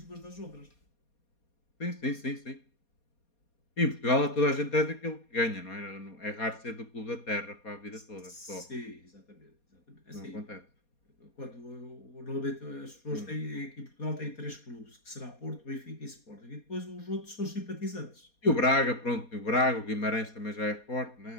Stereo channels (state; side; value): late; right; 4.2 ms